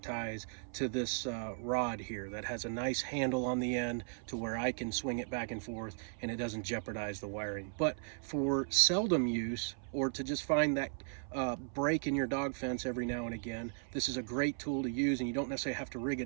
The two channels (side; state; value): left; silent; 53 dB below the other